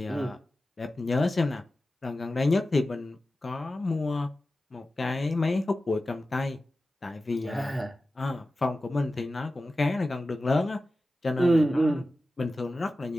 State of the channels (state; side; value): normal; both; correlation 0.94